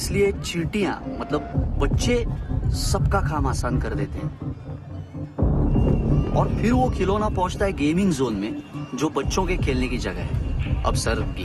चींटियां मतलब बच्चे सबका काम आसान कर देते हैं। और फिर वो खिलौना पहुंचता है गेमिंग जोन में, जो बच्चों के खेलने की जगह है। अब सर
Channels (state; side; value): identical; both; correlation 1.00